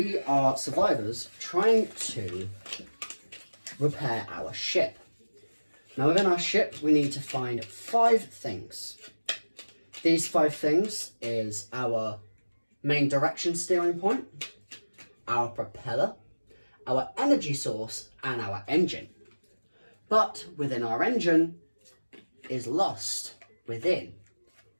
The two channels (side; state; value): both; inverted; correlation -1.00